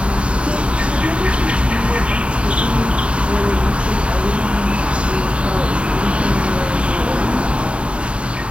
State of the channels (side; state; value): left; late; 0.059 ms